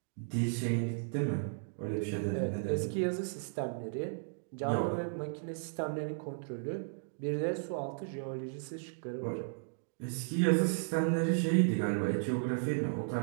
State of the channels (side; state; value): left; silent; digital silence